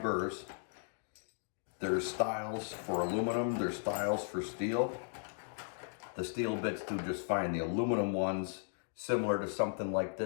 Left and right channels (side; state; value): right; silent; digital silence